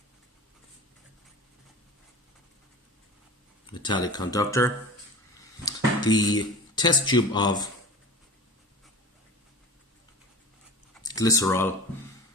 metallic conductor. The test tube of glycerol,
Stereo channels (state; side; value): normal; both; correlation 0.35